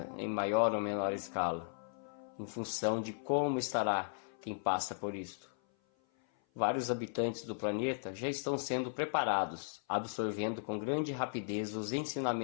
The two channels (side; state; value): right; silent; 53 dB below the other